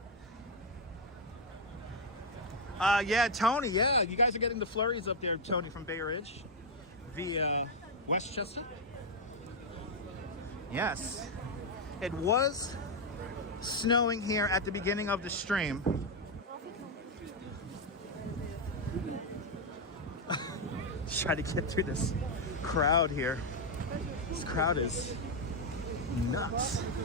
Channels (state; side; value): normal; both; correlation 0.02